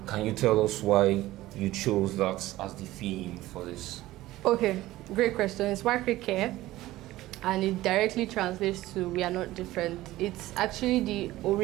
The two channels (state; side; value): quieter; left; 16.6 dB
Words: Can you tell us why you chose that as the theme for this? Okay, great question. It's Wakirike, and it directly translates to "we are not different." It's actually the